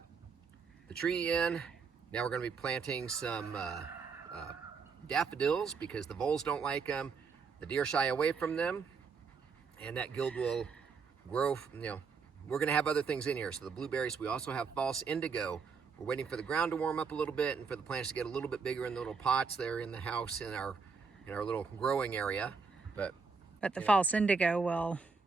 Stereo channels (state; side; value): quieter; left; 5.2 dB